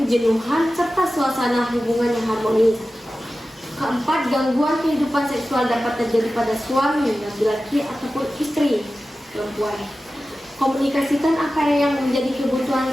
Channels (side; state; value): both; normal; correlation 0.94